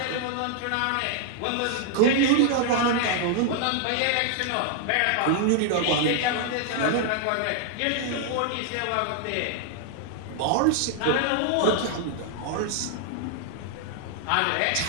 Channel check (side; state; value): both; different; correlation 0.00